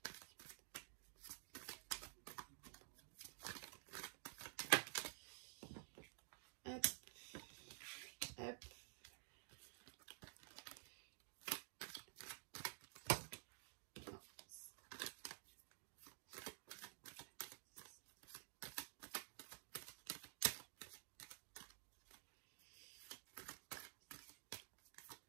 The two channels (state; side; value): silent; left; digital silence